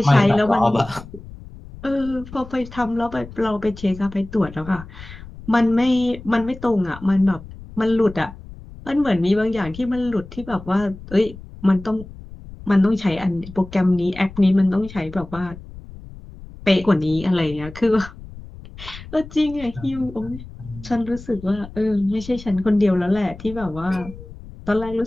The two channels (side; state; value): left; noise; rumble, 16 dB below the sound